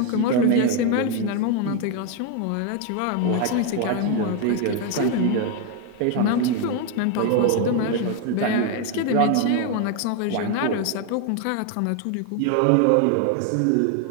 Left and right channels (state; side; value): different; both; correlation 0.01